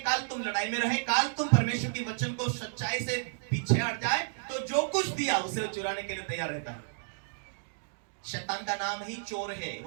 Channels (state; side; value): silent; left; digital silence